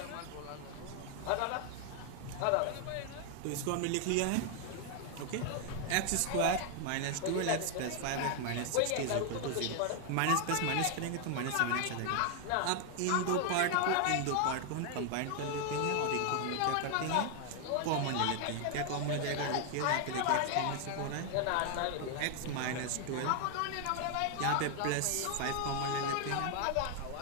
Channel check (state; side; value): different; both; correlation 0.00